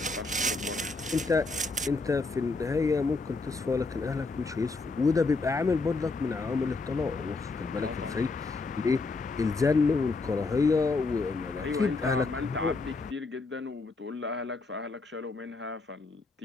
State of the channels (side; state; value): right; quieter; 3.7 dB